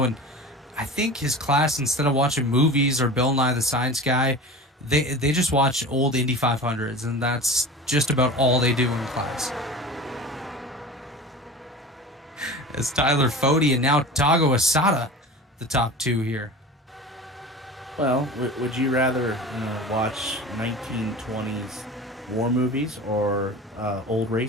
and I think his class, instead of watching movies or Bill Nye the Science Guy, they just watch old Indy 500s, and that's just about all they do in class. As Tyler Fode and now Tago Asada, the top 2 here. Well, would you rather watch 1920s war movies or old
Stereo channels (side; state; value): both; normal; correlation 0.35